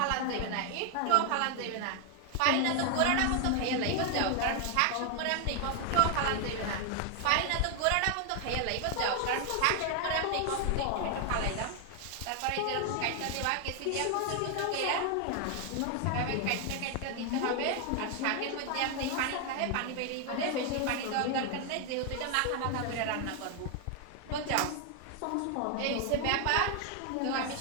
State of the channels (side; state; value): both; different; correlation 0.01